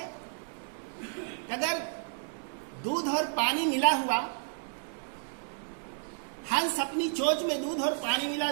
अगर दूध और पानी मिला हुआ, हंस अपनी चोंच में दूध और पानी मिला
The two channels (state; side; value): silent; left; digital silence